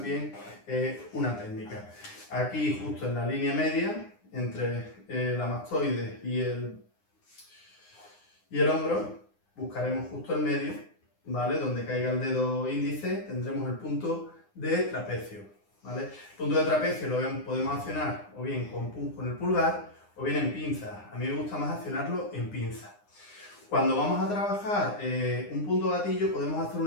una técnica. Aquí, justo en la línea media, entre la mastoide y el hombro, buscaremos justo el medio, ¿vale? Donde caiga el dedo índice, tendremos el punto de trapecio, ¿vale? El punto de trapecio lo podemos accionar o bien con el pulgar o bien en pinza. A mí me gusta más accionarlo en pinza. Cuando vamos a trabajar un punto gatillo, podemos hacer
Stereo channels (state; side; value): late; right; 9.8 ms